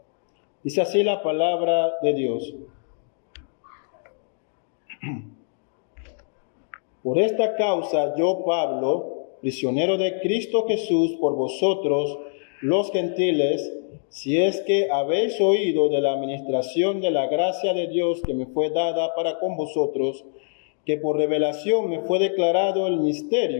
Dice así la palabra de Dios. Por esta causa yo, Pablo, prisionero de Cristo Jesús por vosotros, los gentiles, si es que habéis oído de la administración de la gracia de Dios que me fue dada para con vosotros, que por revelación me fue declarado el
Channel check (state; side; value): silent; right; digital silence